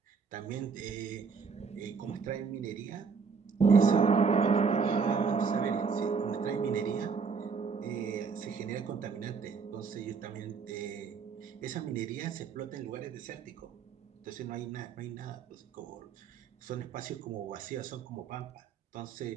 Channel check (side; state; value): left; quieter; 5.5 dB